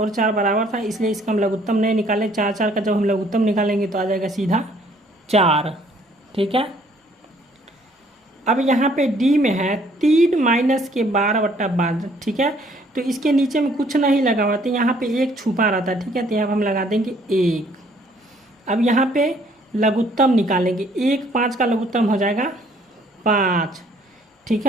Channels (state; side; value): normal; both; correlation 0.62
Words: 4 बराबर था, इसलिए इसका हम लघुत्तम नहीं निकाले। 4 4 का जब हम लघुत्तम निकालेंगे तो आ जाएगा सीधा 4। ठीक है, अब यहाँ पे डी में है 3 - 12/12। ठीक है, तो इसके नीचे में कुछ नहीं लगा हुआ, तो यहाँ पे 1 छुपा रहता है। ठीक है, तो यहाँ हम लगा देंगे 1। अब यहाँ पे लघुत्तम निकालेंगे, 1 5 का लघुत्तम हो जाएगा 5। ठीक